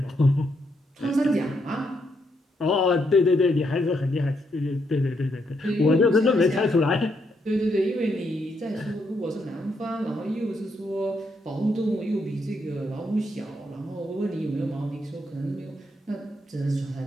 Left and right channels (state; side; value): normal; both; correlation 0.77